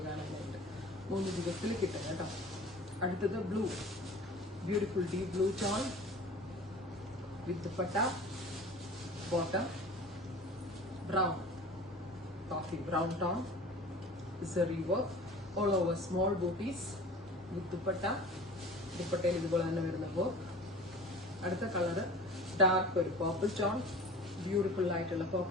കാണാനായിട്ട്. 3 ദിവസത്തിൽ കിട്ടും കേട്ടോ. അടുത്തത് blue, beautiful deep blue tone with dupatta, bottom brown, coffee brown tone, zari work all over, small booties with dupatta. ദുപ്പട്ടയിൽ ഇതുപോലെ തന്നെ വരുന്ന വർക്ക്. അടുത്ത കളർ ഡാർക്ക് ഒരു പർപ്പിൾ ടോൺ, ബ്യൂട്ടിഫുൾ ആയിട്ടുള്ള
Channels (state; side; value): normal; both; correlation 0.41